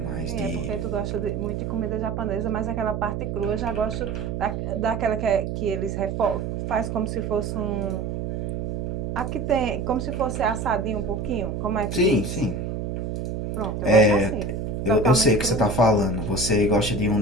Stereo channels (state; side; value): noise; right; hum, 3 dB below the sound